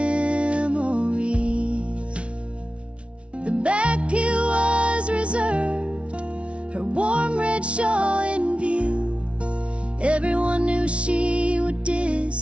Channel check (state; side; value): late; left; 0.061 ms